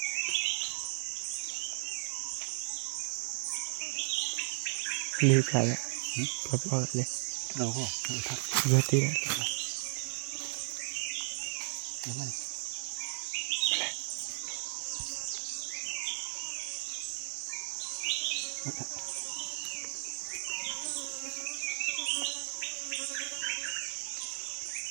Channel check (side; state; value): left; silent; digital silence